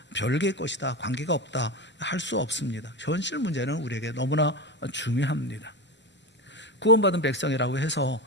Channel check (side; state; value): both; normal; correlation 0.22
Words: 별개의 것이다, 관계가 없다 할 수 없습니다. 현실 문제는 우리에게 너무나 중요합니다. 구원받은 백성이라고 해서